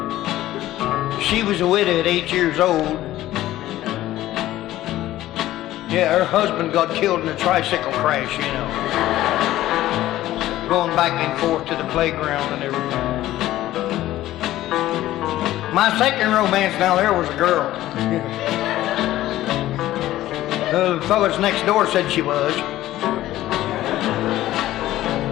She was a widow at 8 years old. Yeah, her husband got killed in a tricycle crash, you know. Going back and forth to the playground and everything. My second romance now there was a girl. The fellas next door said she was.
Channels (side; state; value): right; quieter; 14.8 dB